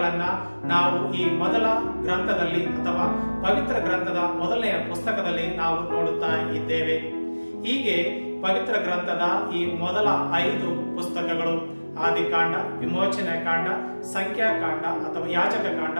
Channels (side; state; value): both; inverted; correlation -1.00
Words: ನಾವು ಈ ಮೊದಲ ಗ್ರಂಥದಲ್ಲಿ ಅಥವಾ ಪವಿತ್ರ ಗ್ರಂಥದ ಮೊದಲನೆಯ ಪುಸ್ತಕದಲ್ಲಿ ನಾವು ನೋಡುತ್ತಾ ಇದ್ದೇವೆ. ಹೀಗೆ ಪವಿತ್ರ ಗ್ರಂಥದ ಈ ಮೊದಲ 5 ಪುಸ್ತಕಗಳು ಆದಿಕಾಂಡ, ವಿಮೋಚನೆ ಕಾಂಡ, ಸಂಖ್ಯಾಕಾಂಡ ಅಥವಾ ಯಾಜಕ ಕಾಂಡ,